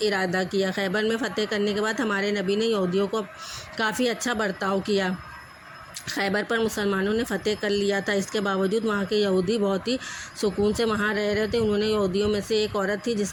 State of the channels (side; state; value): both; identical; correlation 1.00